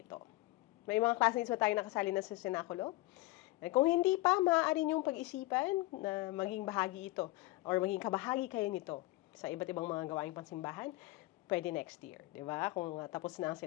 May mga classmates ba tayo nakasali na sa senakulo? Kung hindi pa, maaari niyong pag-isipan na maging bahagi ito or maging kabahagi kayo nito sa iba't ibang mga gawaing pansimbahan, pwede next year, di ba? Kung tapos na ang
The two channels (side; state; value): right; quieter; 19.9 dB